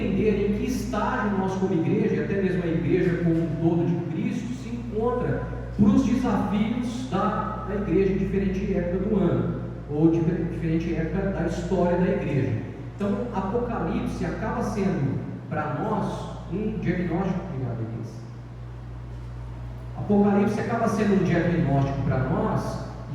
em que estágio nós como igreja, e até mesmo a igreja como um todo de Cristo, se encontra para os desafios da igreja em diferente época do ano, ou diferente época da história da igreja. Então, Apocalipse acaba sendo para nós um diagnóstico. Obrigado, Elisa. Apocalipse acaba sendo um diagnóstico para nós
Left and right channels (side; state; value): both; identical; correlation 1.00